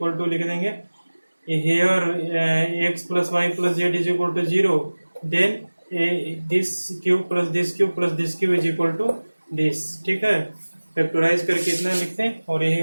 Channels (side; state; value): both; inverted; correlation -1.00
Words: टू लिख देंगे, here x plus y plus z is equal to 0, then this cube plus this cube plus this cube is equal to this, ठीक है। फैक्टराइज करके इतना लिखते हैं और यही